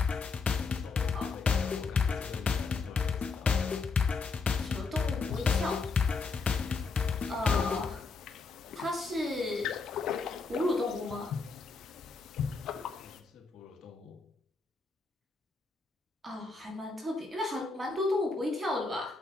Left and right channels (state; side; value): quieter; right; 4.3 dB